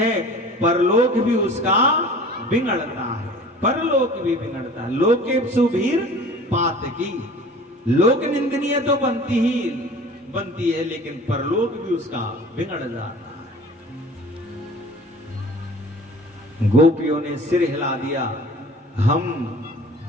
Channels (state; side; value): normal; both; correlation 0.44